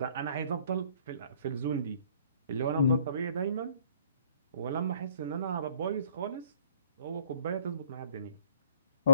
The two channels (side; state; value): both; inverted; correlation -0.60